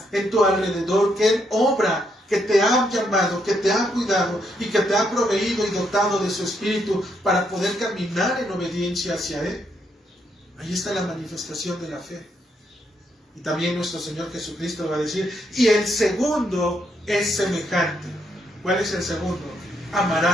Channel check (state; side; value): normal; both; correlation 0.76